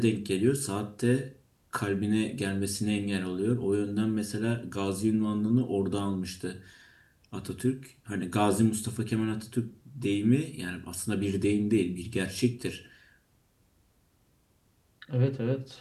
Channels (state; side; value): identical; both; correlation 1.00